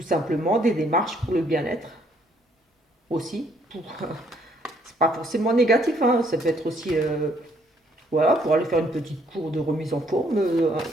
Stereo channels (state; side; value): normal; both; correlation 0.67